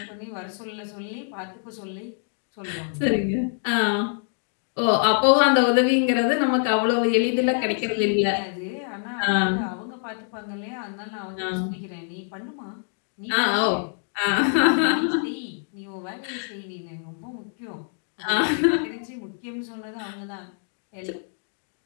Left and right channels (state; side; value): silent; right; 61 dB below the other